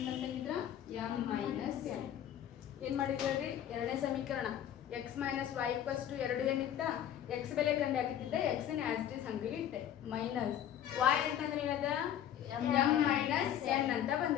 ಅಂತಂಗಿದ್ರ? m minus n. ಏನು ಮಾಡಿದ್ರಿ? ಎರಡನೇ ಸಮೀಕರಣ x minus y equals to 2n ಇತ್ತ, x ಬೆಲೆ ಕಂಡು ಹಾಕಿದ್ದೆ, x ನ ಆಸ್ ಇಟ್ ಈಸ್ ಹಂಗೆ ಇಟ್ಟೆ. ಮೈನಸ್ y ಅಂತಂದ್ರೆ ಏನದ? m ಮೈನಸ್ n ಅಂತ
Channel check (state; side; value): quieter; right; 10.5 dB